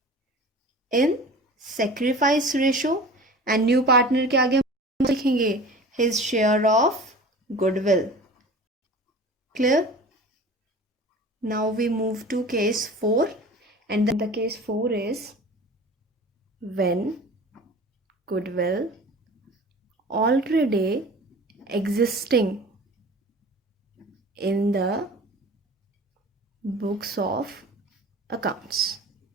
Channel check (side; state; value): both; normal; correlation 0.40